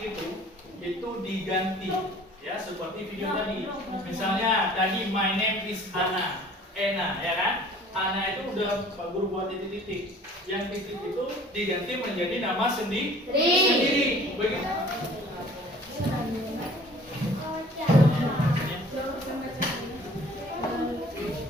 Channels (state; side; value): normal; both; correlation 0.50